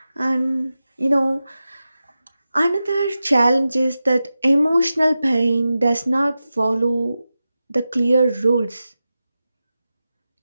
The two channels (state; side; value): inverted; both; correlation -0.93